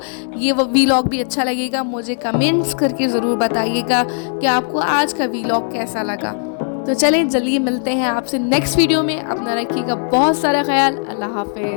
ये वीलॉग भी अच्छा लगेगा। मुझे कमेंट्स करके ज़रूर बताइएगा कि आपको आज का वीलॉग कैसा लगा। तो चलें जल्दी मिलते हैं आपसे नेक्स्ट वीडियो में। अपना रखिएगा बहुत सारा ख्याल। अल्लाह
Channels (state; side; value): silent; right; 58 dB below the other